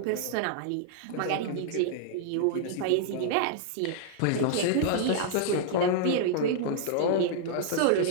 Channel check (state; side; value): different; both; correlation -0.01